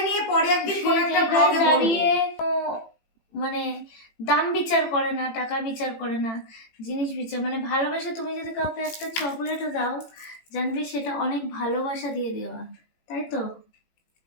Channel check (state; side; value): late; right; 18 ms